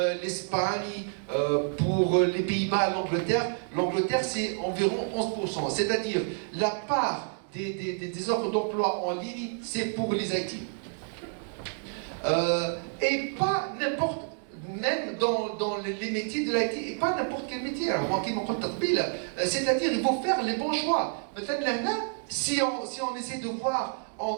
l'Espagne, pour les Pays-Bas, l'Angleterre c'est environ 11%. C'est-à-dire la part des offres d'emploi en ligne, c'est pour les IT. Et pas n'importe, même dans les métiers de l'IT, et pas n'importe quel métier. Alors, c'est-à-dire il faut faire les bons choix. Peut-être là, si on essaie de voir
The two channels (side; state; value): left; silent; 58 dB below the other